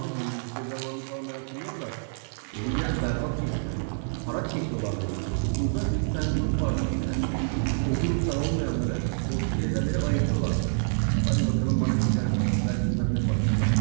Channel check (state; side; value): silent; left; digital silence